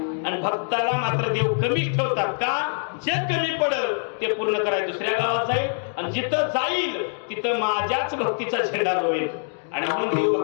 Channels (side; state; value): right; silent; 62 dB below the other